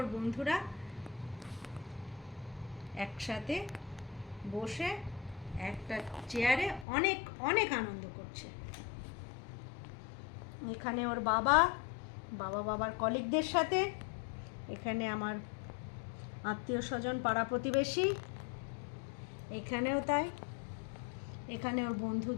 বন্ধুরা একসাথে বসে একটা চেয়ারে অনেক অনেক আনন্দ করছে। এখানে ওর বাবার কলিগদের সাথে, এখানে আমার আত্মীয় স্বজন পাড়া প্রতিবেশী, এখানেও তাই, এখানে ওর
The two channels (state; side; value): drops out; right; at 6.9 s